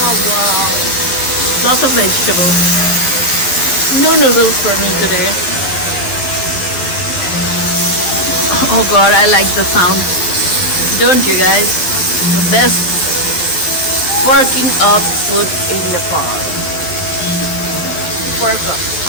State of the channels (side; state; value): right; late; 11 ms